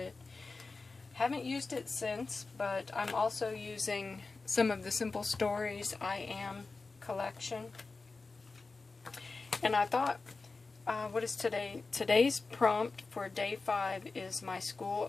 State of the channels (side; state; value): right; quieter; 3.9 dB